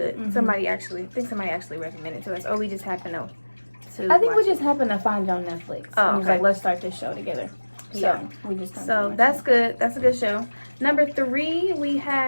Somebody actually recommended it to us, or we just happened to. I think we just happened to find it on Netflix. And was like, let's start this show together. So we just that's good. That's a good show. Number 3, we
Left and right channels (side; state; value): both; inverted; correlation -1.00